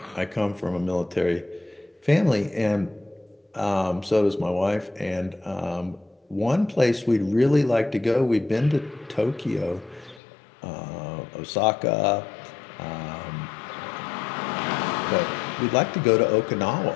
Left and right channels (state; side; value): drops out; right; at 10.2 s